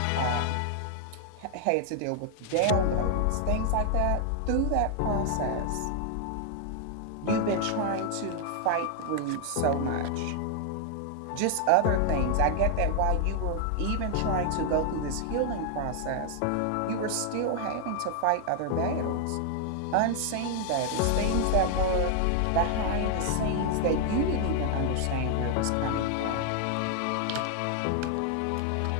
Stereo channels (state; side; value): different; both; correlation 0.00